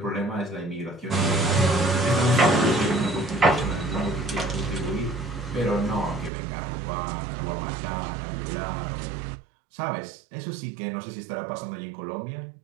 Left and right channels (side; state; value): left; drops out; at 6.3 s